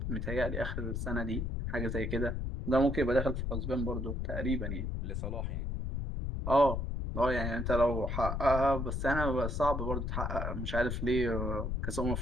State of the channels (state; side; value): noise; left; rumble, 2 dB below the sound